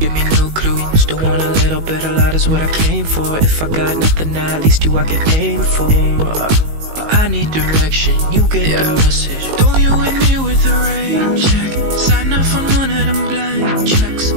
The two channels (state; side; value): late; left; 19 ms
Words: me no clue. Still want a little bit, a lot is what I came for. If I got nothing, at least you I can aim for. But I need direction, you get the message. Don't you hit me with a rain check. Sign off on one of them blank checks.